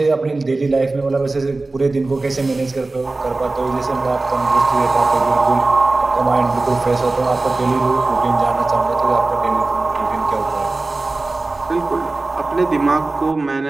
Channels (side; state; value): left; quieter; 3.3 dB